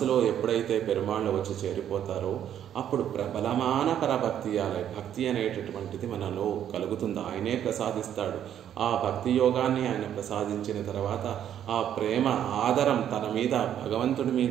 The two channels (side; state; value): left; quieter; 10.1 dB